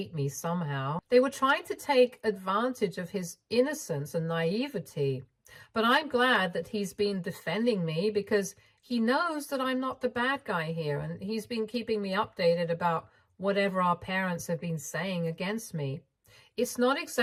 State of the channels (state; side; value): identical; both; correlation 1.00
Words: me somehow. They were trying to take advantage of his innocence and naivety. But I'm glad that he's been defending me because he knows that I'm not the bad guy here, and he's been keeping me updated about whatever our parents have been saying against me. It's not